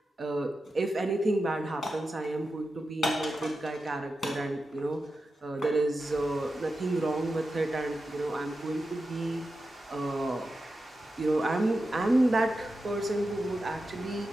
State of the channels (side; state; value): both; normal; correlation 0.91